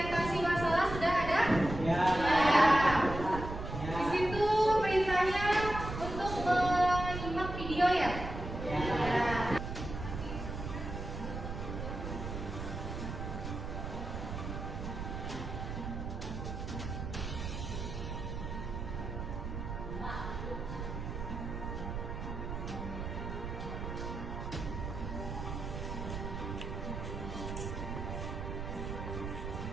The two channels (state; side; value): noise; right; rumble, 6 dB below the sound